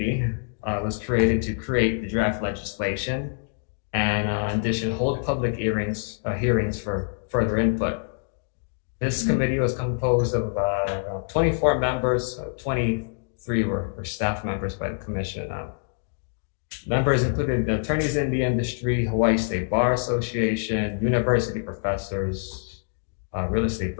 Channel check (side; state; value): right; silent; digital silence